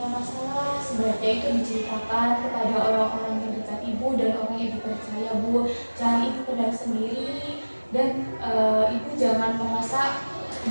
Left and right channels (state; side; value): inverted; both; correlation -1.00